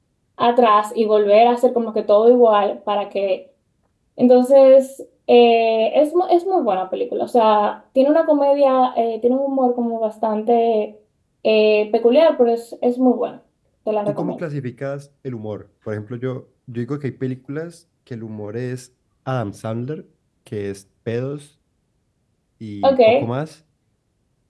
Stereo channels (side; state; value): both; identical; correlation 1.00